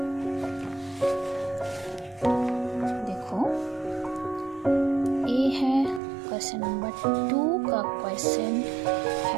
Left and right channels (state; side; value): drops out; left; at 6.0 s